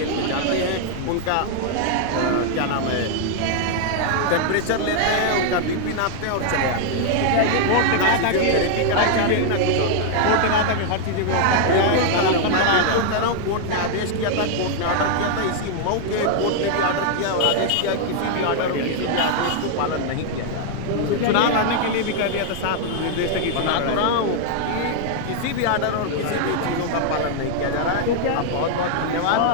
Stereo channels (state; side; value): different; both; correlation 0.00